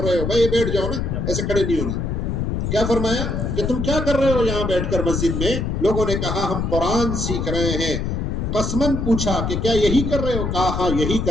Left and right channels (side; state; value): left; noise; rumble, 1 dB below the sound